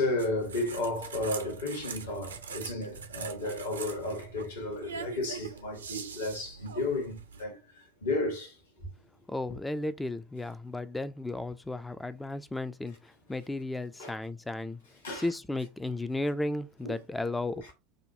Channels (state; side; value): normal; both; correlation 0.37